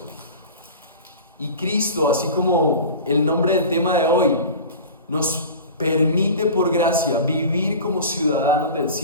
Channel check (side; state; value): both; inverted; correlation -0.36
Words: Y Cristo, así como el nombre del tema de hoy, nos permite por gracia vivir como ciudadanos del